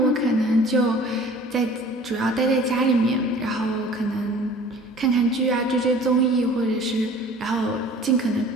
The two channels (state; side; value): normal; both; correlation 0.47